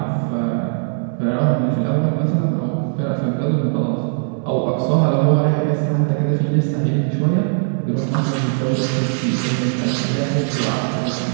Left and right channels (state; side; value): silent; left; digital silence